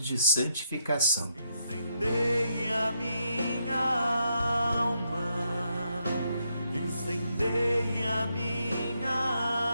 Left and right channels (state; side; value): inverted; both; correlation -0.78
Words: de santificação. Incendei a minha alma, incendei a